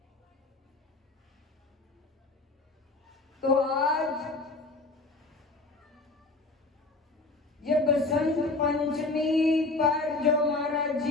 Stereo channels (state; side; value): quieter; right; 3.3 dB